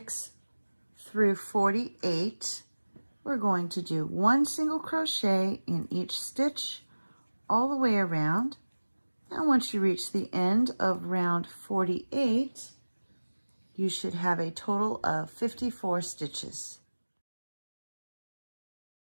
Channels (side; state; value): both; inverted; correlation -1.00